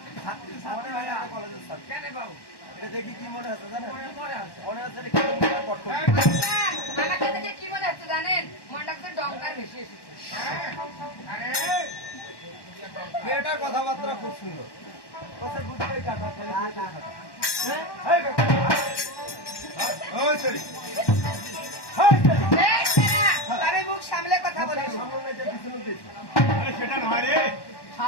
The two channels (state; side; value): late; right; 1.1 ms